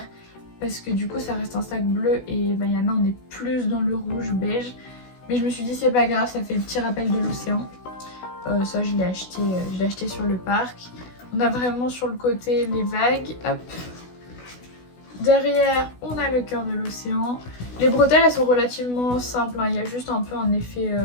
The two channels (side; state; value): right; late; 16 ms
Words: Parce que du coup ça reste un sac bleu et Vaiana on est plus dans le rouge beige. Mais je me suis dit c'est pas grave, ça fait le petit rappel de l'océan. Ça je l'ai acheté sur le parc. On a vraiment sur le côté les vagues. Hop. Derrière, on a le cœur de l'océan. Les bretelles, elles sont relativement simples, hein. Il y a juste un peu un effet